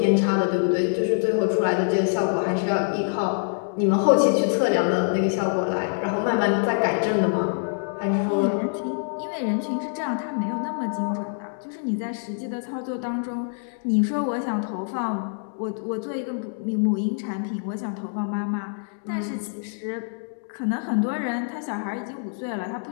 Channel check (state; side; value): silent; right; digital silence